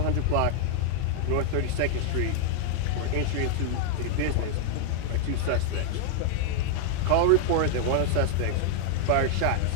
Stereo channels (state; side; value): different; both; correlation 0.00